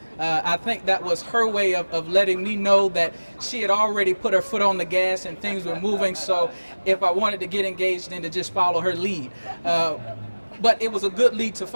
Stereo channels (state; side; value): inverted; both; correlation -1.00